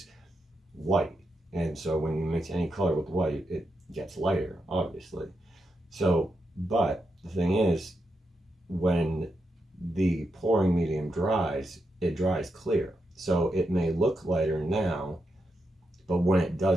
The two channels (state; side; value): normal; both; correlation 0.84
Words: white. And so when you mix any color with white, it gets lighter, obviously. So, but the thing is, when the pouring medium dries, it dries clear. So it may look lighter now, but when it